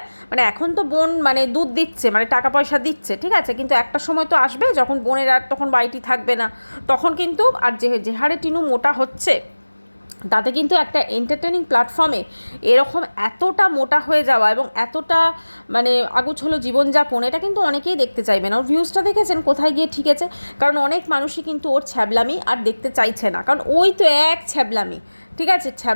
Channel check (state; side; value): inverted; both; correlation -1.00